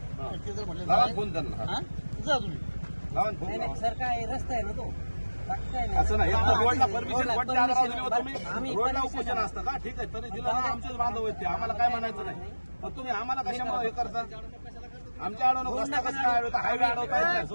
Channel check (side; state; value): both; inverted; correlation -1.00